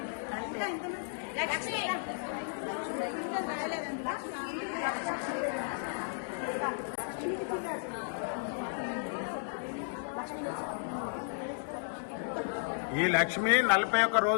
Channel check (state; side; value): silent; right; digital silence